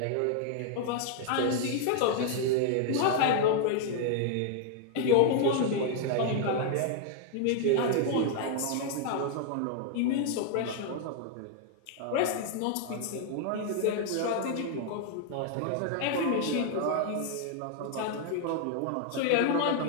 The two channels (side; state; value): both; different; correlation 0.00